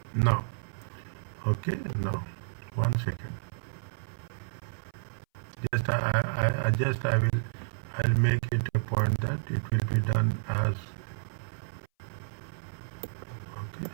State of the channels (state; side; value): silent; left; 57 dB below the other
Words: Now. Okay. Now. 1 second. Just I will I'll make it a point that it will be done as okay.